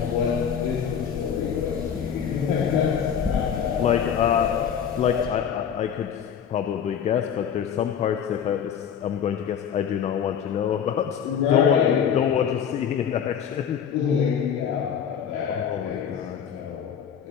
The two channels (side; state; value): right; quieter; 8.0 dB